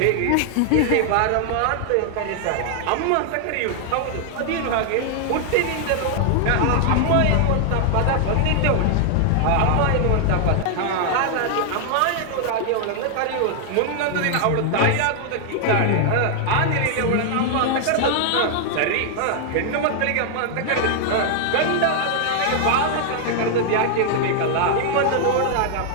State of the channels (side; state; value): both; different; correlation 0.00